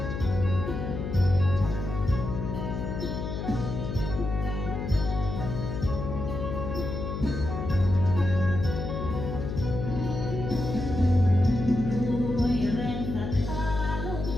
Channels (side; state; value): left; noise; hum, 4 dB below the sound